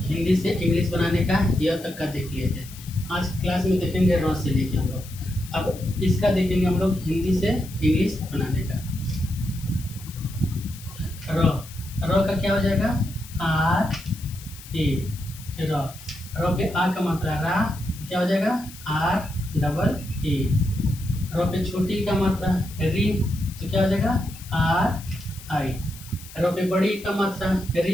हिंदी से इंग्लिश बनाने का यह तक का देख लिए थे। आज क्लास में देखेंगे र से लेके हम लोग। अब इसका देखेंगे हम लोग हिंदी से इंग्लिश बनाने का। र का क्या हो जाएगा? R A. र पे आ का मात्रा रा, क्या हो जाएगा? R double A. र पे छोटी का मात्रा री, तो क्या हो जाएगा? आर आई। र पे बड़ी का मात्रा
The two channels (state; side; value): noise; left; hiss, 17 dB below the sound